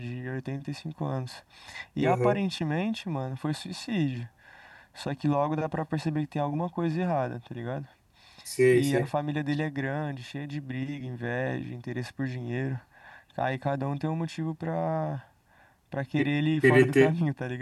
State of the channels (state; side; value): identical; both; correlation 1.00